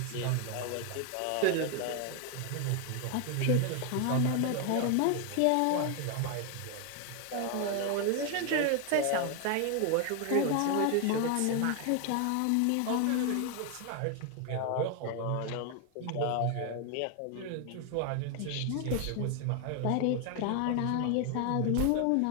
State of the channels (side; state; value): both; different; correlation 0.01